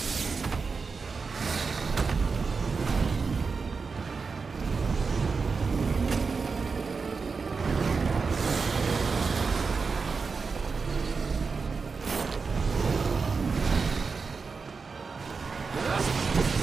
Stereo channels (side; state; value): left; quieter; 4.8 dB